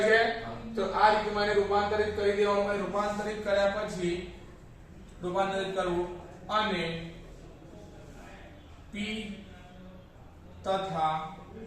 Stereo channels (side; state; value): both; identical; correlation 1.00